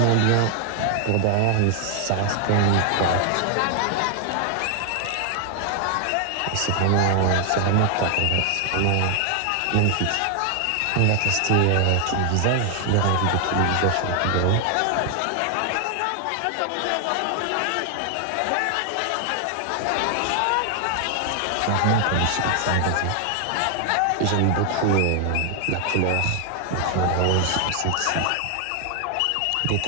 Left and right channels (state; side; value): different; both; correlation 0.00